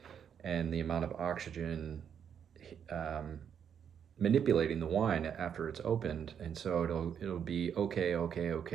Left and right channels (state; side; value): quieter; left; 8.1 dB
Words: and the amount of oxygen manipulating the wine after it's opened. And so it'll be okay,